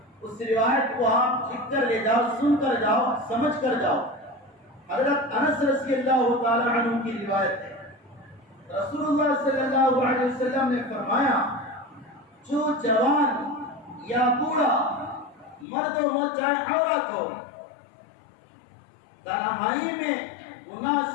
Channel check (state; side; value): drops out; right; at 15.7 s